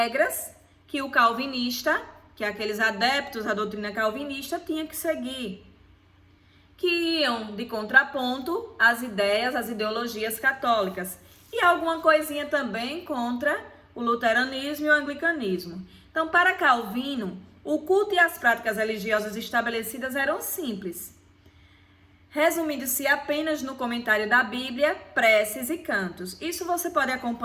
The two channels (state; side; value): identical; both; correlation 1.00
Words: que o calvinista, que aqueles adeptos à doutrina calvinista, tinham que seguir, que iam de contraponto às ideias, às ideologias católicas, e alguma coisinha também contra o luteranismo e o anglicanismo. Então, para Calvino, o culto e as práticas religiosas estabelecidas eram simples, resumindo-se apenas no comentário da Bíblia, preces e cantos. Isso você pode